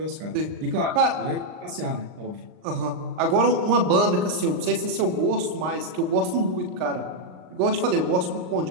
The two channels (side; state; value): left; late; 39 ms